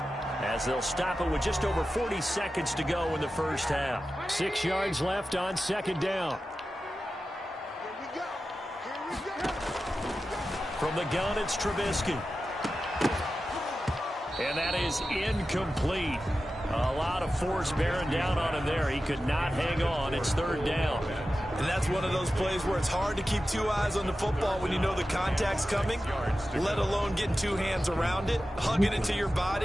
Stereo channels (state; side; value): normal; both; correlation 0.93